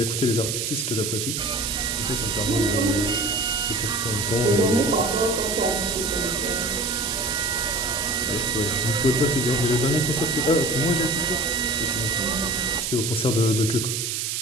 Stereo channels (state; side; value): noise; right; hiss, 1 dB below the sound